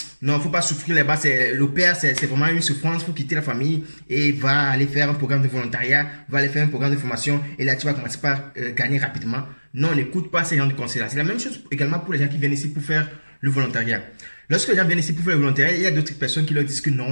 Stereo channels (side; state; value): both; inverted; correlation -1.00